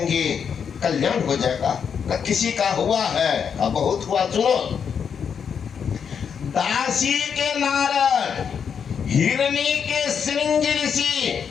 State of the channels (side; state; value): right; quieter; 7.1 dB